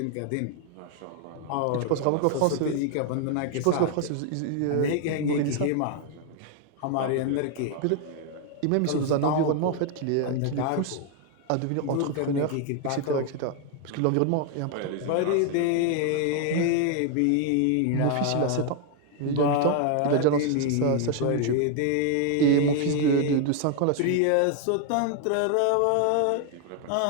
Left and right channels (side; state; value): both; different; correlation 0.00